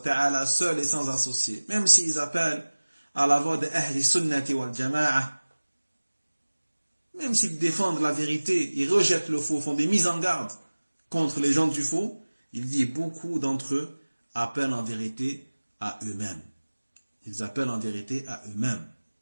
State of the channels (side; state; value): both; inverted; correlation -1.00